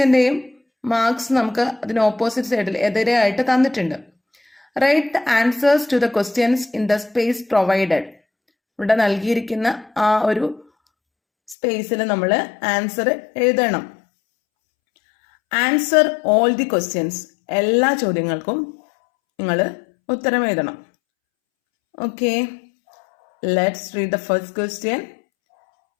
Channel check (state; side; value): drops out; right; at 11.6 s